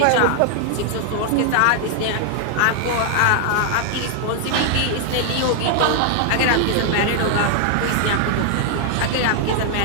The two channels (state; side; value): different; both; correlation 0.00